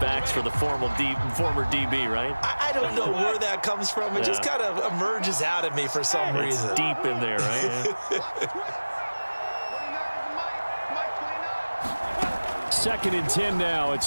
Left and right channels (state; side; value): inverted; both; correlation -1.00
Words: for the former DB, right? I don't know where that comes from. It just kind of emerges out of me for some reason. It's deep in there, right? Second and 10 now.